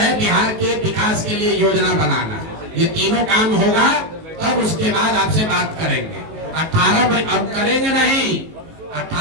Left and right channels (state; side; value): late; left; 19 ms